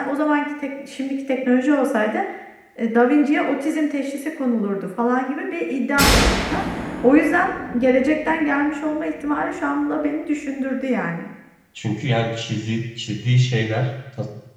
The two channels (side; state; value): both; identical; correlation 1.00